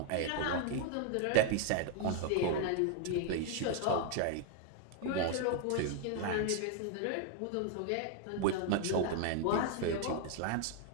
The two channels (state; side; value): different; both; correlation 0.00